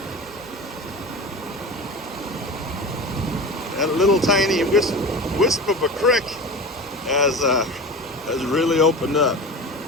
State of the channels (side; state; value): both; normal; correlation 0.31